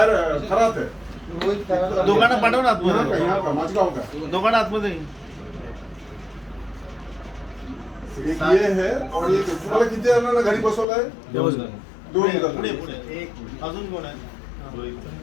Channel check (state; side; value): drops out; right; at 10.9 s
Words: खरात है। दोघांना पाठव ना यहाँ का माझगांव का दोघांना आतमध्ये एक ये है और ये तुम्हाला किती जणांना घरी बसवलंय? 2 पुढे एक अजून कोण आहे?